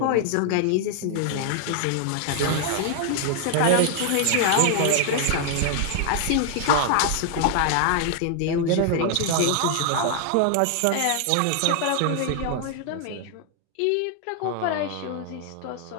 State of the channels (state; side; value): different; both; correlation 0.00